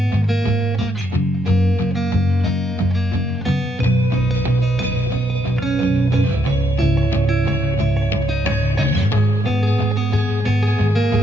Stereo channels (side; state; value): both; normal; correlation 0.75